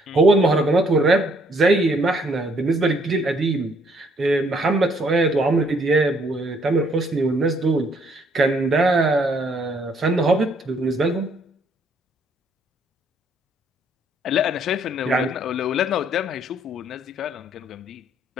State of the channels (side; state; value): both; normal; correlation 0.66